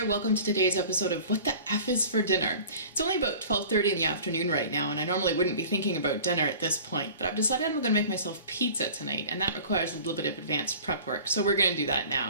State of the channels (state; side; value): inverted; both; correlation -0.43